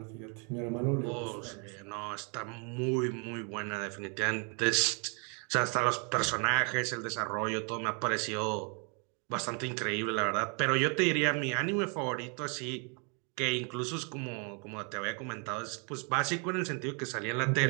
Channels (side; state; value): left; quieter; 36.7 dB